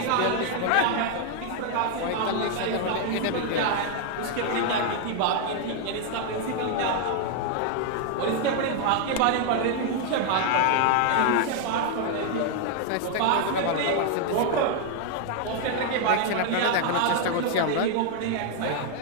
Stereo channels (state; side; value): different; both; correlation 0.00